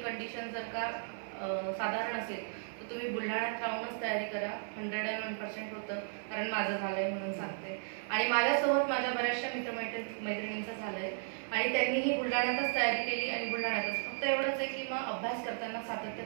कंडिशन जर का साधारण असेल तर तुम्ही बुलढाण्यात राहूनच तयारी करा. 101% होतं, कारण माझं झालंय म्हणून सांगते. आणि माझ्यासोबत माझ्या बऱ्याचशा मैत्रिणींचं झालंय आणि त्यांनीही बुलढाण्यातच तयारी केली आणि बुलढाण्यातच. फक्त एवढंच आहे की मग अभ्यास करताना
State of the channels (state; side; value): silent; left; 54 dB below the other